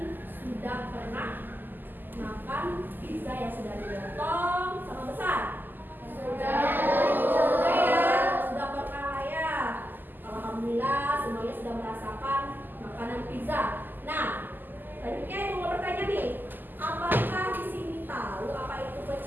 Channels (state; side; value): late; left; 0.089 ms